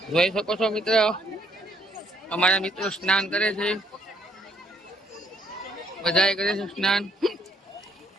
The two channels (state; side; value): normal; both; correlation 0.67